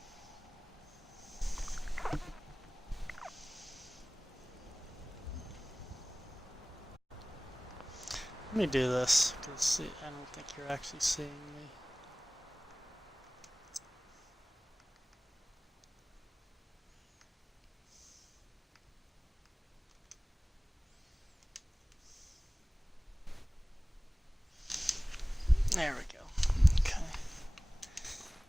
Let me do this, because I don't think you're actually seeing me. There we go. Okay.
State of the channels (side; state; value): both; normal; correlation 0.98